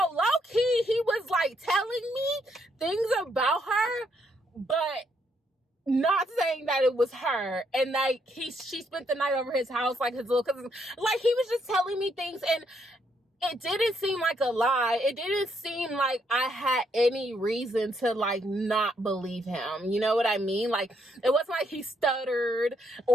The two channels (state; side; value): normal; both; correlation 0.74